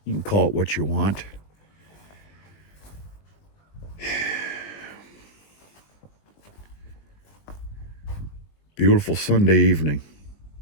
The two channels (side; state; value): right; late; 20 ms